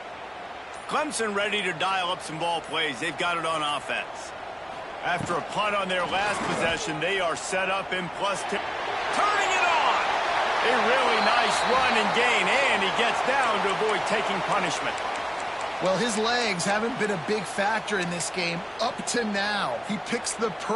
Clemson ready to dial up some ball plays. They've got it on offense. After a punt on their last possession, they are set up in +2. Turning it on! A really nice run and gain, and he gets down to avoid taking punishment. Well, his legs haven't been a big factor in this game up to now. He picks the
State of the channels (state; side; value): identical; both; correlation 1.00